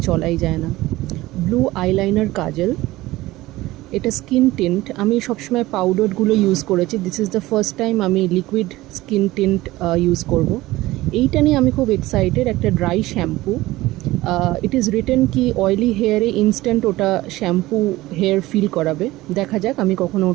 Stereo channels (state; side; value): quieter; left; 18.1 dB